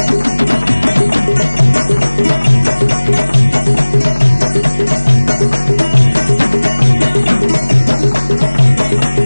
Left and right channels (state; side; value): inverted; both; correlation -1.00